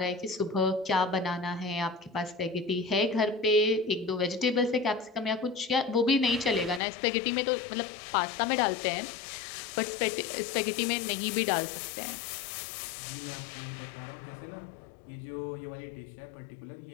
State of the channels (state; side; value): drops out; right; at 6.8 s